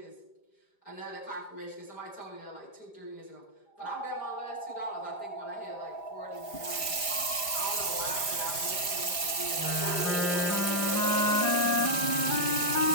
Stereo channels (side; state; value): right; late; 4.8 ms